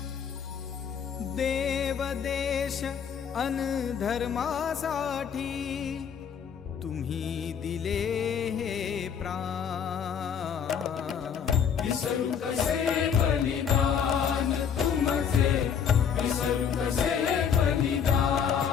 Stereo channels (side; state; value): right; quieter; 7.5 dB